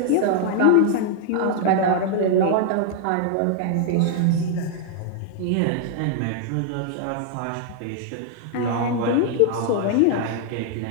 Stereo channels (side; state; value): both; different; correlation 0.00